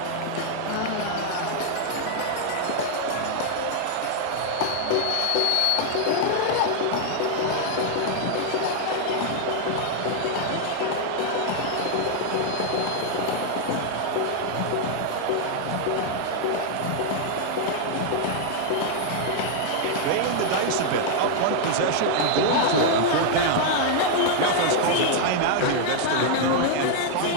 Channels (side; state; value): both; different; correlation 0.00